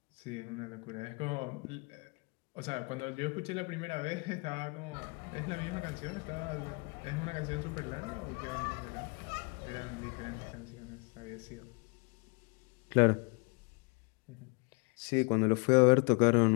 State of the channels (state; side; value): quieter; right; 31.9 dB